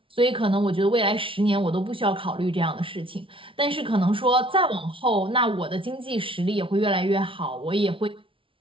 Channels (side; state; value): left; late; 0.25 ms